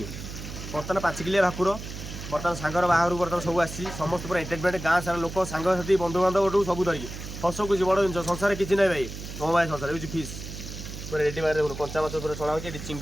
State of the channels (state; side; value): noise; right; hum, 10 dB below the sound